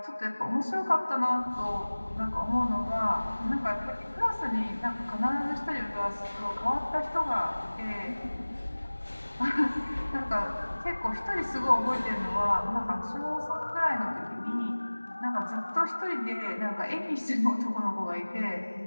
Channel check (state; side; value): inverted; both; correlation -1.00